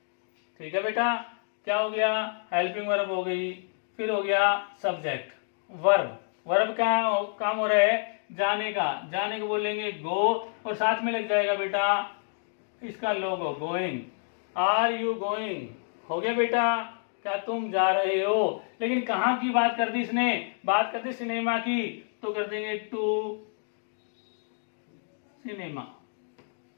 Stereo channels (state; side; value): silent; right; digital silence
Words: ठीक है बेटा, क्या हो गया, हेल्पिंग वर्ब हो गई। फिर हो गया सब्जेक्ट, वर्ब। वर्ब का काम हो रहा है जाने का, जाने को बोलेंगे गो, और साथ में लग जाएगा बेटा इसका लोगो गोइंग, आर यू गोइंग, हो गया बेटा, क्या तुम जा रहे हो। लेकिन कहाँ की बात कर दी इसने, बात कर दी सिनेमा की, तो कर देंगे टू सिनेमा।